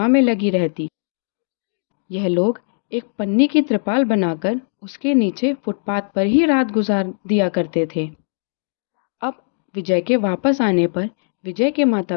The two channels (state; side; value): silent; right; digital silence